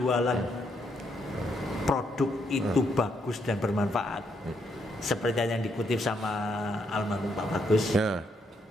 produk itu bagus dan bermanfaat, seperti yang dikutip sama almarhum Pak Bagus,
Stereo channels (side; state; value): both; normal; correlation 0.75